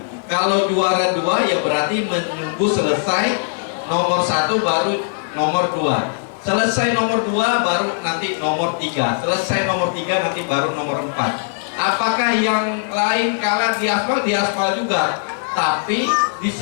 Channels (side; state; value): right; silent; 66 dB below the other